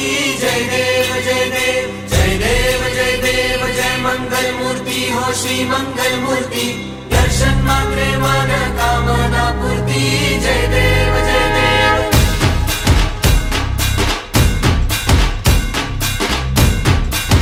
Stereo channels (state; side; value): identical; both; correlation 1.00